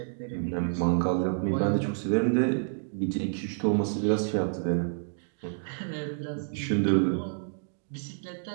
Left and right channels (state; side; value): silent; left; digital silence